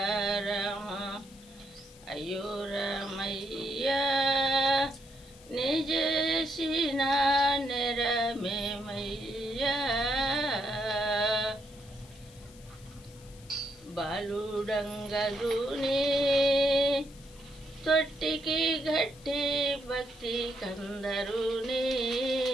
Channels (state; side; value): noise; left; hiss, 23 dB below the sound